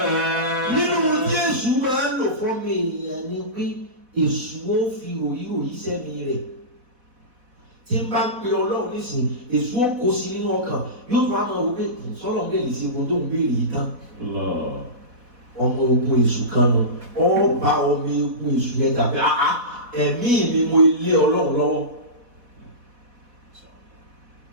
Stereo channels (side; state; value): left; late; 4.1 ms